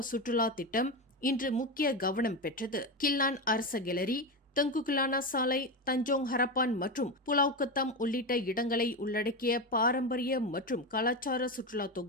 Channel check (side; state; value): both; normal; correlation 0.16